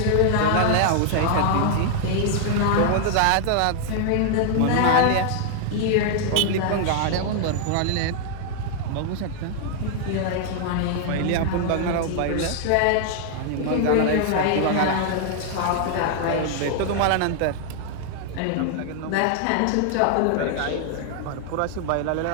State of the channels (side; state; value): both; different; correlation 0.00